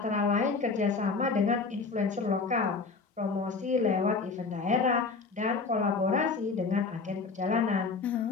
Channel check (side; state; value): right; quieter; 4.4 dB